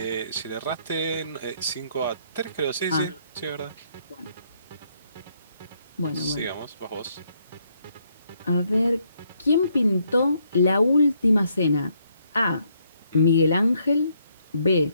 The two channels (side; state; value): both; inverted; correlation -0.72